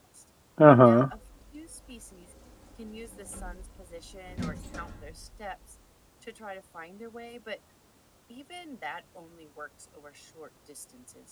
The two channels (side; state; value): both; identical; correlation 1.00